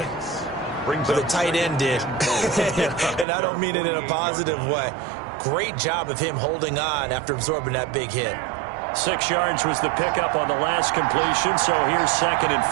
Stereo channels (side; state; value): left; drops out; at 3.2 s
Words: but the tight end did. And I don't mean it in a positive way. Great job of him holding on after absorbing that big hit. 6 yards was the pickup on the last completion, so here's 2nd and